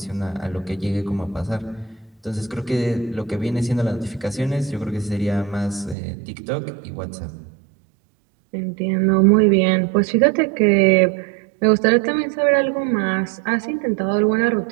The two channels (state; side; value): drops out; left; at 6.0 s